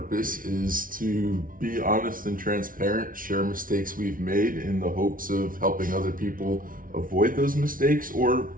is to be honest and transparent, share mistakes we've made in the hopes of helping other people avoid those mistakes or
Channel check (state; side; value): late; left; 0.40 ms